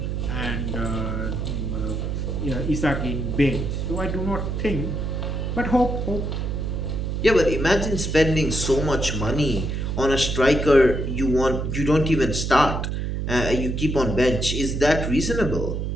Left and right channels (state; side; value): noise; right; hum, 2 dB below the sound